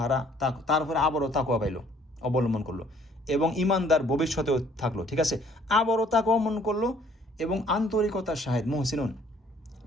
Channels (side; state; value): both; normal; correlation 0.60